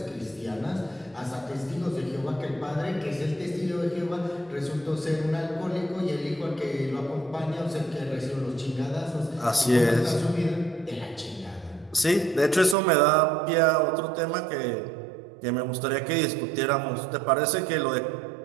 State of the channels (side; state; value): left; drops out; at 12.8 s